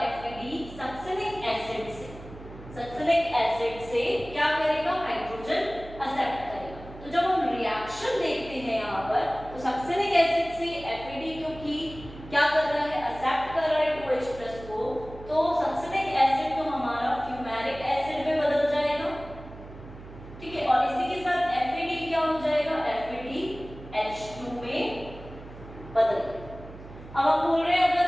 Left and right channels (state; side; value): noise; right; hum, 16 dB below the sound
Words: FAD सक्सिनिक एसिड से क्या करेगा, हाइड्रोजन एक्सेप्ट करेगा। तो जब हम रिएक्शन देखते हैं यहाँ पर, तो सक्सिनिक एसिड से FAD क्योंकि क्या कर रहा है, एक्सेप्ट कर रहा है 2H+ को, तो सक्सिनिक एसिड तो हमारा फ्यूमेरिक एसिड में बदल जाएगा। ठीक है, और इसी के साथ FAD क्या हो जाएगा, FADH2 में बदल जाएगा। अब हम बोल रहे हैं अगर